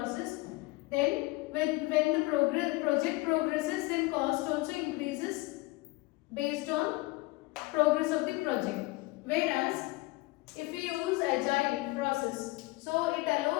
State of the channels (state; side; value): quieter; right; 22.0 dB